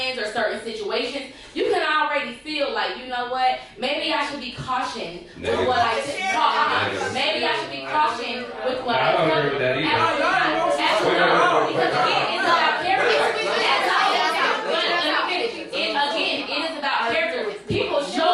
or certain situations, you can already feel like, you know what, maybe I should be cautioned with what I talk. Maybe I should be cautioned with what I tell. I don't agree with that either. Absolutely. Because again, it's about character. Again, it is about character. People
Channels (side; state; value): both; identical; correlation 1.00